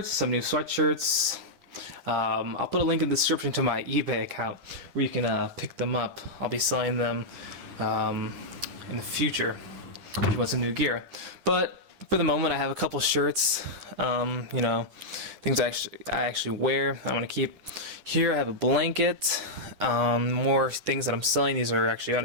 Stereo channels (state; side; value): late; left; 11 ms